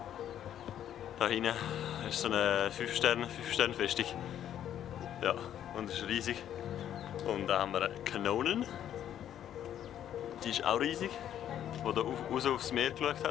Da hinten ist so eine 5-Sterne-Festung. Ja, und es ist riesig. Und da haben wir Kanonen. Die ist auch riesig. Die da raus aufs Meer geschaut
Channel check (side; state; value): right; quieter; 10.5 dB